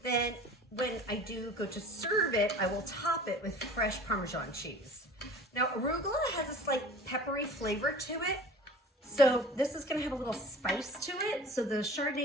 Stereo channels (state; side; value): normal; both; correlation 0.42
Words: Then when I do go to serve it, I will top it with fresh Parmesan cheese. Now, arugula has a slight peppery flavor to it, so this is gonna have a little spice to it. So the